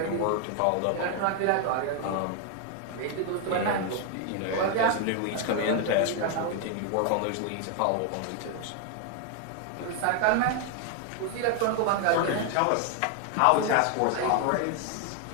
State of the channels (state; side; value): different; both; correlation 0.00